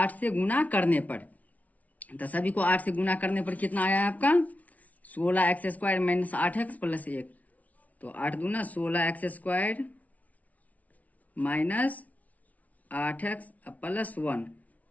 से गुना करने पर। तो सभी को 8 से गुना करने पर कितना आया है आपका, 16x² माइनस 8x प्लस 1। तो 8 दूना 16x² माइनस 8x प्लस 1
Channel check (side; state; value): right; late; 0.070 ms